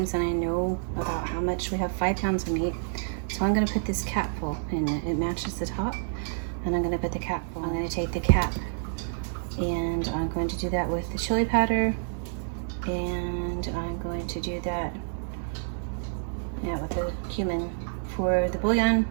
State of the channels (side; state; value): left; silent; digital silence